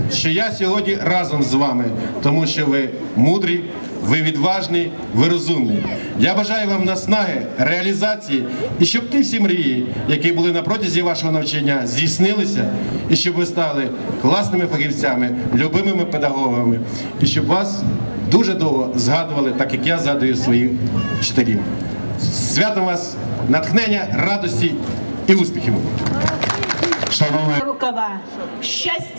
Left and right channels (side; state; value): both; inverted; correlation -1.00